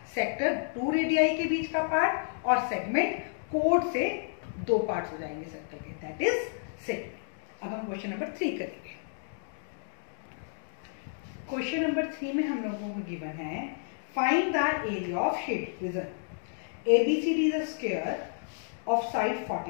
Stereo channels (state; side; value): silent; right; digital silence